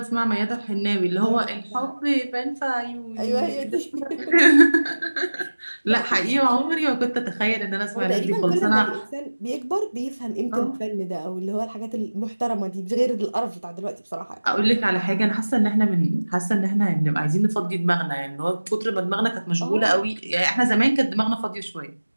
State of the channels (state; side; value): inverted; both; correlation -1.00